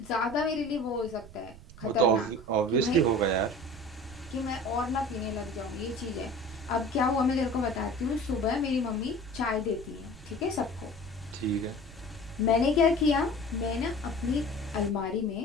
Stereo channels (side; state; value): right; noise; rumble, 17 dB below the sound